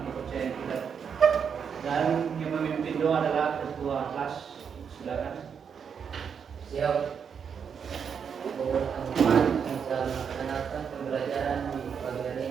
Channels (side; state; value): left; quieter; 7.0 dB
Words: kepercayaan kita. Dan yang memimpin doa adalah ketua kelas. Silakan. Siap. Teman-teman yang sedang melaksanakan pembelajaran di pagi hari